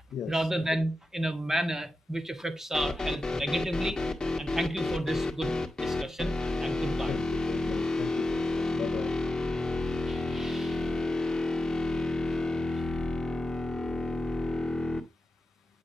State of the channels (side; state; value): both; normal; correlation 0.91